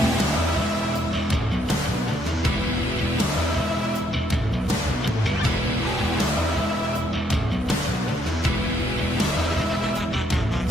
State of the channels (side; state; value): both; normal; correlation 0.72